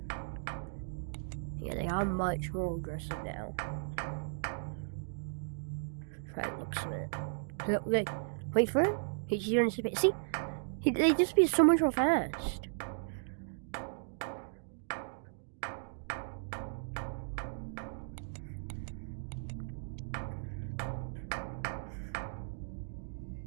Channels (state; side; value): silent; left; digital silence